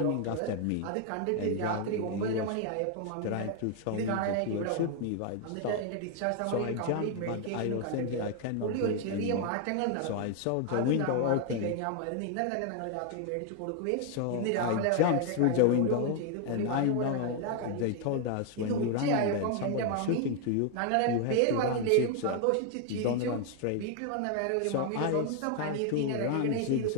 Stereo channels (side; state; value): both; different; correlation 0.00